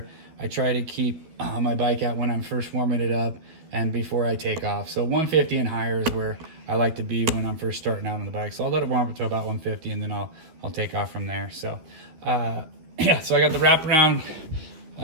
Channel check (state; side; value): late; left; 12 ms